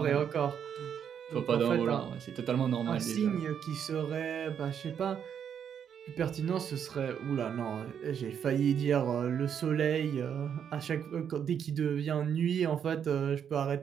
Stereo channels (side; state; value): left; quieter; 8.2 dB